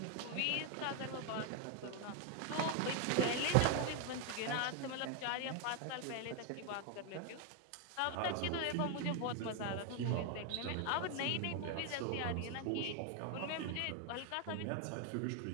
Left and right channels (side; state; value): both; different; correlation 0.01